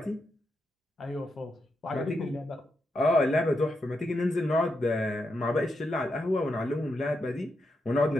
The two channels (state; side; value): normal; both; correlation 0.84